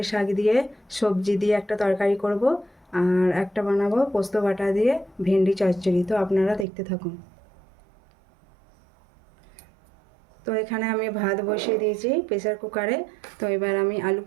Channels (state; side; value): drops out; left; at 6.7 s